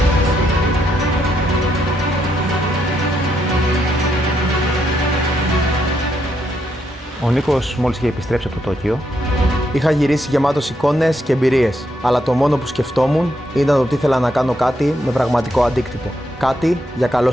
Ο Νίκος μόλις είχε επιστρέψει από το Τόκιο. Είχα γυρίσει γεμάτος εικόνες και εμπειρίες, αλλά το μόνο που σκεφτόμουν ήταν ότι ήθελα να κάνω κάτι με πραγματικό αντίκτυπο. Κάτι για καλό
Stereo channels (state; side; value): normal; both; correlation 0.78